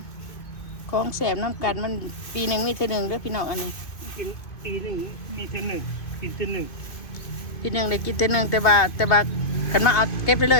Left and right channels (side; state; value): right; late; 2.5 ms